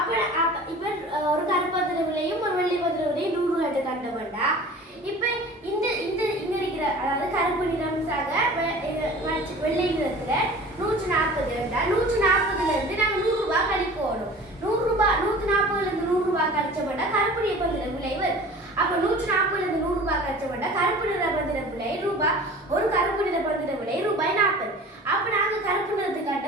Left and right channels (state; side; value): normal; both; correlation 0.42